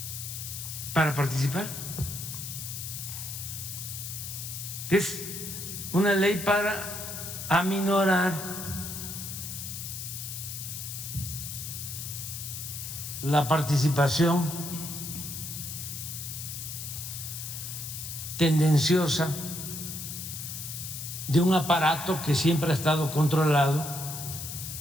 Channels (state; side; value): noise; left; hiss, 7 dB below the sound